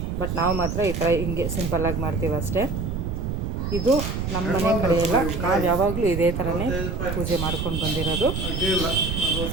ಬಟ್ ನಾವು ಮಾತ್ರ ಈ ಥರ ಹಿಂಗೆ ಸಿಂಪಲ್ಲಾಗಿ ಮಾಡ್ತೀವಿ ಅಷ್ಟೇ. ಇದು ನಮ್ಮ ಮನೆ ಕಡೆ ಎಲ್ಲ ನಾವು ಯಾವಾಗಲೂ ಇದೇ ಥರನೇ ಪೂಜೆ ಮಾಡ್ಕೊಂಡು ಬಂದಿರೋದು.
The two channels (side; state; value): right; noise; rumble, 2 dB below the sound